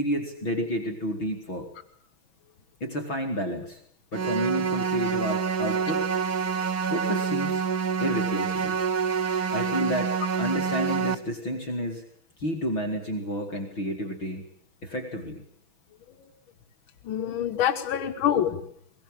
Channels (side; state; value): right; late; 6.1 ms